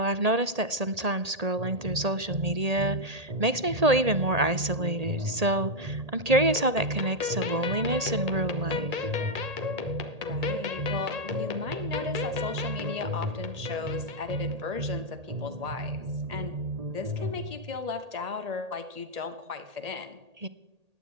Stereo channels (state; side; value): late; left; 1.8 ms